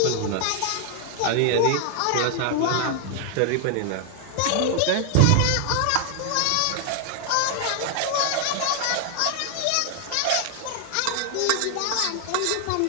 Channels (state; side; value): different; both; correlation 0.00